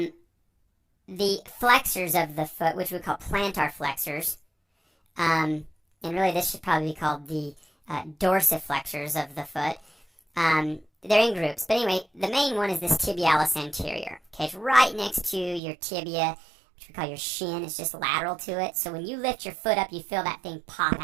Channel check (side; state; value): left; drops out; at 15.6 s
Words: The flexors of the foot, which we call plantar flexors. And really this should probably be called the dorsiflexors of the foot. They're in groups. But anyway, the main one is this tibialis anterior. Okay, it's right next to your tibia, which we call your shin. It's just lateral to it. So when you lift your foot up, you feel that thing pop